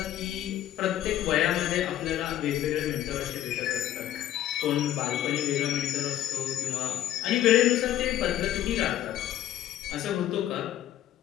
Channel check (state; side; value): quieter; right; 12.5 dB